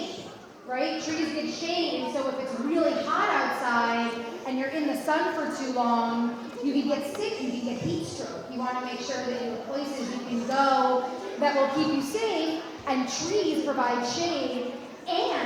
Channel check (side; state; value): both; identical; correlation 1.00